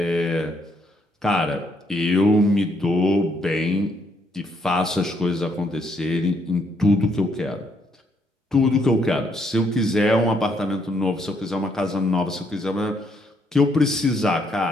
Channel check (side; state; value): both; normal; correlation 0.72